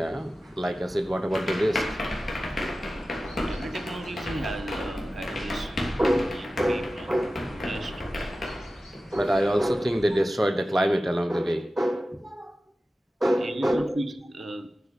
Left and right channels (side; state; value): both; normal; correlation 0.95